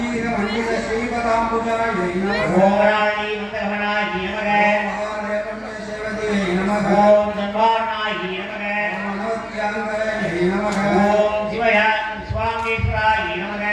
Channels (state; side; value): identical; both; correlation 1.00